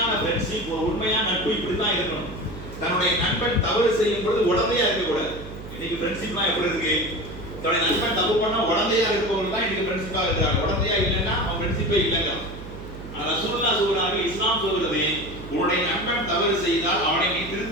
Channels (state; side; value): noise; right; hum, 13 dB below the sound